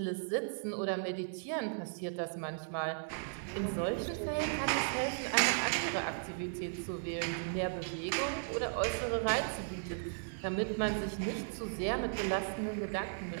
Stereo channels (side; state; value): left; silent; 54 dB below the other